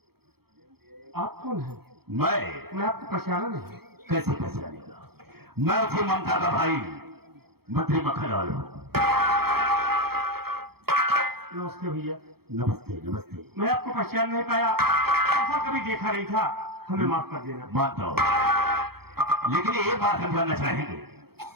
आप कौन हैं? मैं आपको पहचाना नहीं। कैसे पहचानेगा? मैं उसी ममता का भाई मंत्री मक्खनलाल हूँ। नमस्ते भैया। नमस्ते नमस्ते। मैं आपको पहचान नहीं पाया, ऐसा कभी देखा नहीं था, हमें माफ कर देना। मानता हूँ, लेकिन एक बात हम जानना चाहेंगे,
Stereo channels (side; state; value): left; late; 0.96 ms